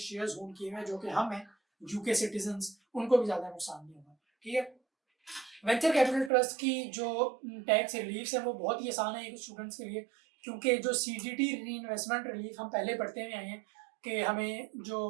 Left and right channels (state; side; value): drops out; left; at 6.3 s